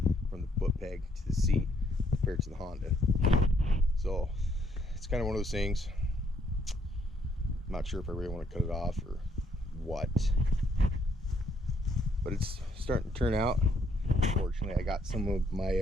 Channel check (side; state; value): both; normal; correlation 0.70